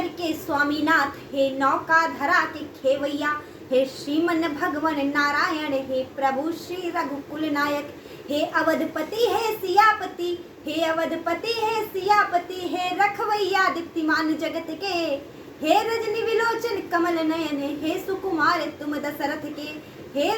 के स्वामीनाथ, हे नौका धरा के खेवैया। हे श्रीमन भगवन नारायण, हे प्रभु श्री रघुकुल नायक। हे अवधपति हे सियापति, हे अवधपति हे सियापति। हे रखवैया दीप्तिमान जगत के, हे रजनी विलोचन कमल नयन। हे सुकुमार तुम दशरथ के, हे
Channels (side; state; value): both; identical; correlation 1.00